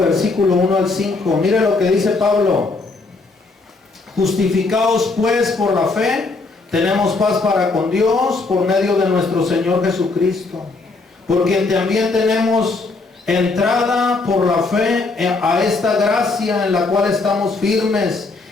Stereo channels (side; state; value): right; quieter; 3.7 dB